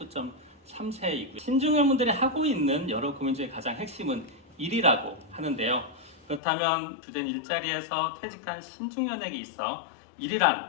신중년분들이 하고 있는 여러 고민 중에 가장 핵심은 일이라고 하는데요. 그렇다면 주된 일자리에서 퇴직한 신중년에게 있어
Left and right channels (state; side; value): drops out; right; at 6.4 s